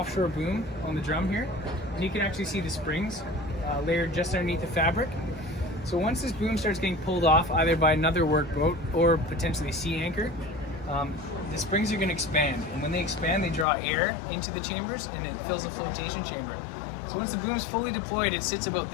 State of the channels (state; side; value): drops out; right; at 13.7 s